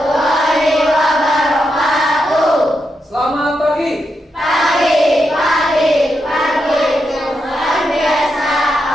wabarakatuh. Selamat pagi. Pagi luar biasa.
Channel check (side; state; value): both; normal; correlation 0.84